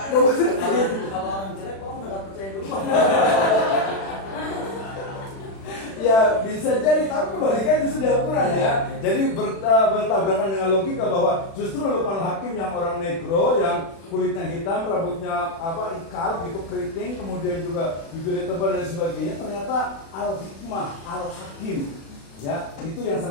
orang jelek, orang nggak percaya dulu. Ya bisa jadi, tapi kebalikan itu sudah Al-Quran ya. Jadi bertabrakan dengan logika bahwa justru Luqmanul Hakim yang orang negro, yang kulitnya hitam, rambutnya apa ikal gitu, keriting, kemudian juga bibirnya tebal dan sebagainya, ternyata Al-Hikmah, Al-Hakim. Ya, itu yang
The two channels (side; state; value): right; late; 36 ms